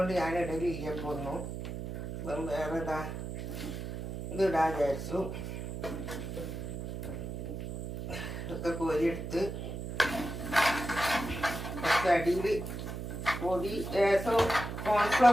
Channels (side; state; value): right; noise; hum, 6 dB below the sound